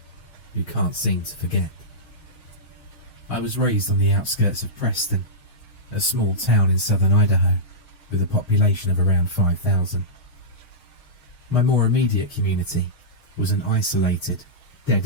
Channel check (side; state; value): right; late; 6.4 ms